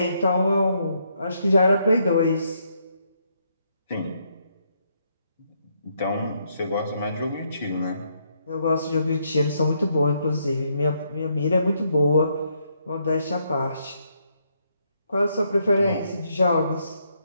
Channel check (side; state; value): both; inverted; correlation -0.75